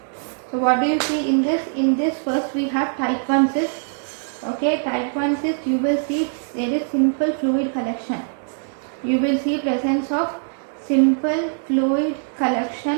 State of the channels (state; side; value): silent; left; digital silence